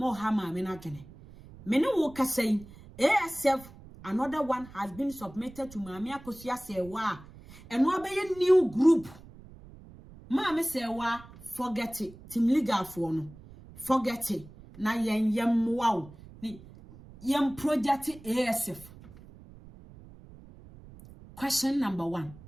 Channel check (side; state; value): right; noise; rumble, 19 dB below the sound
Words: ha maame na kene me ne wo kasai ASF another one has been submitted to Mami Akosua say wa eno abeye new group Mami say wa forget it. Team legal for no. Forget it. Na yem wow. Ni yem project ASF. Question number 1.